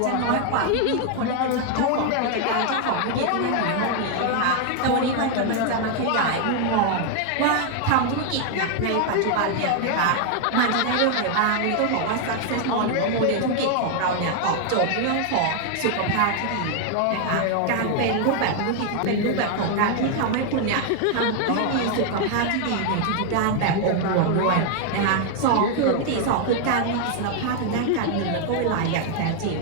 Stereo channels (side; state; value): both; different; correlation 0.00